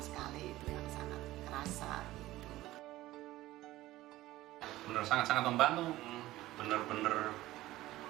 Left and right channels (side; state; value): left; quieter; 16.5 dB